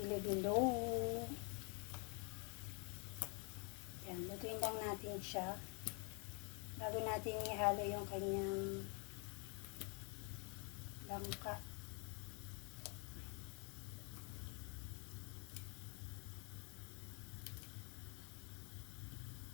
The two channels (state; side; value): quieter; right; 35.2 dB